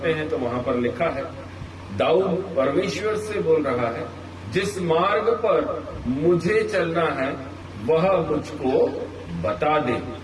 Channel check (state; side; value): identical; both; correlation 1.00